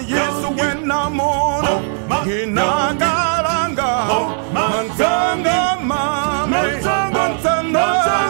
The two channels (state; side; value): silent; left; 62 dB below the other